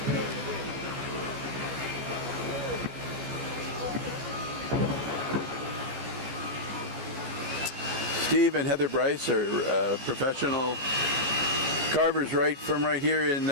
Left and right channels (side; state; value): left; late; 14 ms